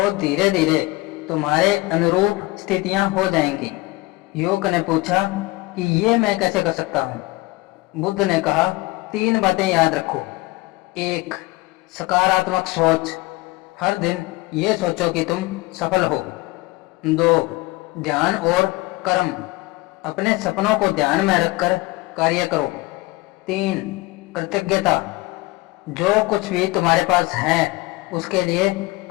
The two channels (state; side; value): quieter; right; 21.5 dB